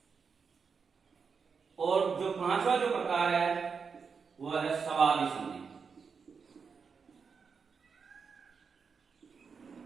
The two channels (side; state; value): left; quieter; 5.6 dB